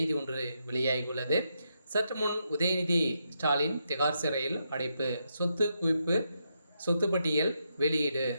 ஒன்று வெளியாகியுள்ளது. சற்று முன் உதயநிதி ஸ்டாலின் திகார் சிறையில் அடைப்பு, சொத்து குவிப்பு, சொத்து பட்டியல் வெளியீடு,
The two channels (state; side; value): inverted; both; correlation -0.81